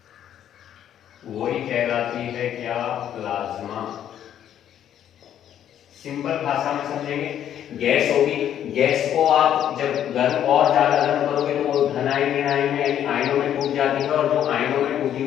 वही कहलाती है क्या? प्लाज्मा। सिंपल भाषा में समझेंगे, गैस होगी, गैस को आप जब गर्म और ज्यादा गर्म करोगे तो वो धन आयन ऋण आयन में यानी आयनों में टूट जाती है, और जो आयनों में टूटी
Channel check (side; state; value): right; quieter; 10.3 dB